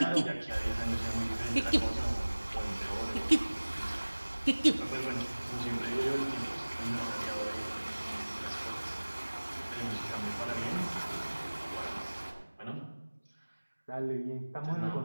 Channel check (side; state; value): both; inverted; correlation -1.00